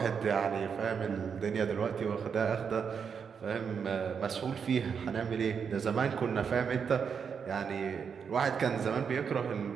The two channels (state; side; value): quieter; left; 6.6 dB